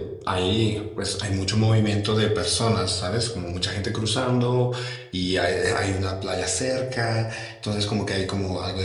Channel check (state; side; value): identical; both; correlation 1.00